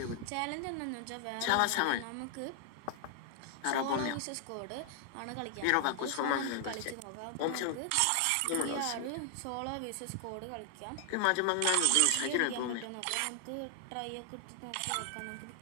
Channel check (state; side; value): different; both; correlation 0.00